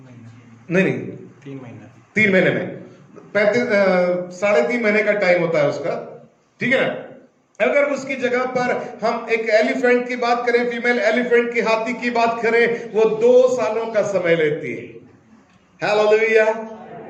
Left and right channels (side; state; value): both; identical; correlation 1.00